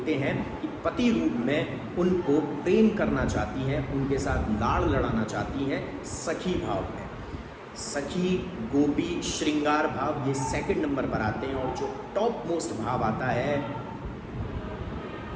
हैं, कि पति रूप में उनको प्रेम करना चाहती हैं, उनके साथ लाड़ लड़ाना चाहती हैं। सखी भाव में सखी, गोपी, श्रृंगार भाव ये सेकंड नंबर पर आते हैं। और जो टॉप मोस्ट भाव आता है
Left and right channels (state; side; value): identical; both; correlation 1.00